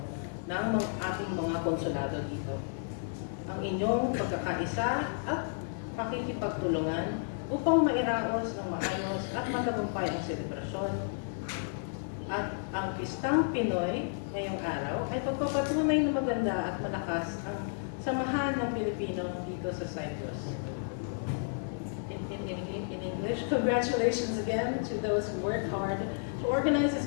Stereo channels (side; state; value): right; silent; digital silence